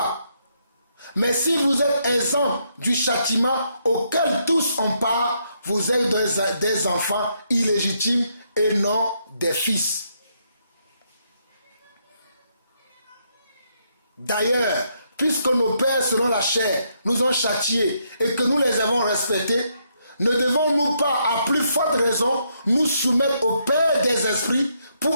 Mais si vous êtes exempt du châtiment auquel tous ont part, vous êtes des enfants illégitimes et non des fils. D'ailleurs, puisque nos pères selon la chair nous ont châtiés et que nous les avons respectés, ne devons-nous pas à plus forte raison nous soumettre au Père des esprits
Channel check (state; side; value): inverted; both; correlation -0.76